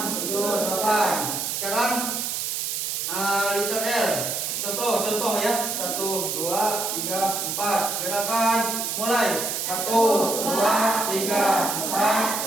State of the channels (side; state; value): right; noise; hiss, 2 dB below the sound